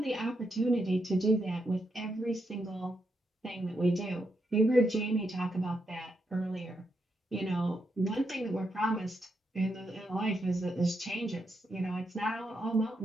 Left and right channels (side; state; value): both; normal; correlation 0.82